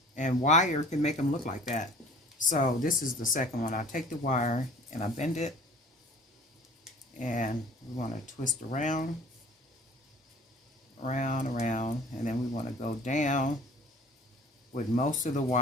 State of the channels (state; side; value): normal; both; correlation 0.47